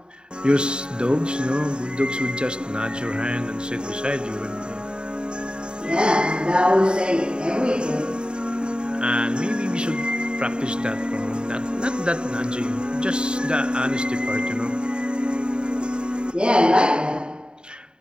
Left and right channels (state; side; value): late; left; 0.050 ms